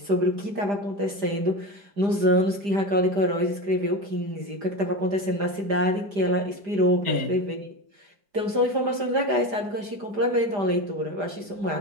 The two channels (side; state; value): left; late; 5.0 ms